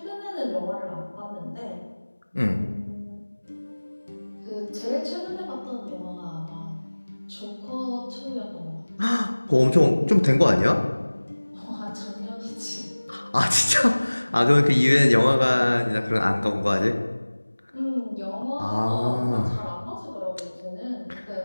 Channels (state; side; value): inverted; both; correlation -1.00